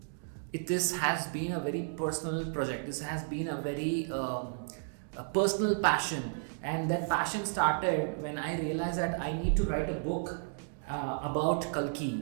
this has been a very personal project. This has been a very a personal passion, and that passion started when I realized that I need to write a book about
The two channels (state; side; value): silent; left; digital silence